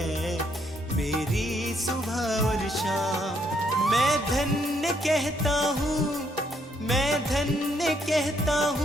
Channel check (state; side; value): normal; both; correlation 0.72